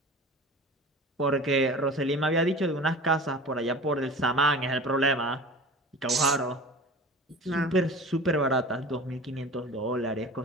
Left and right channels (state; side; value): normal; both; correlation 0.37